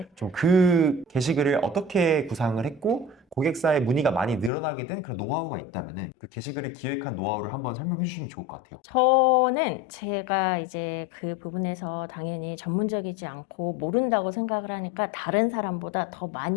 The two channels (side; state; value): right; drops out; at 4.5 s